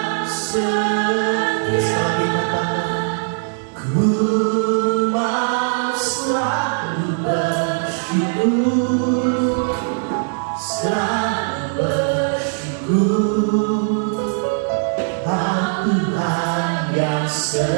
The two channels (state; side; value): silent; left; digital silence